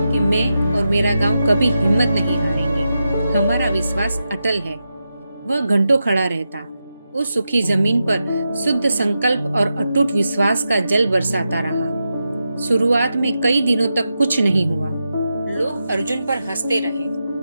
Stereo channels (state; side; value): inverted; both; correlation -0.89